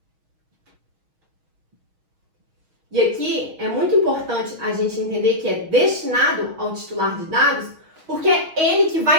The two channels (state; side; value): late; left; 6.3 ms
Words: E aqui é muito importante a gente entender que é destinado ao titular de dados, porque é ele que